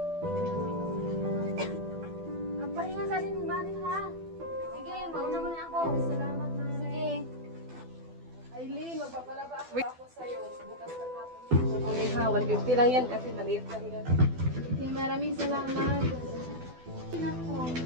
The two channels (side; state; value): left; late; 12 ms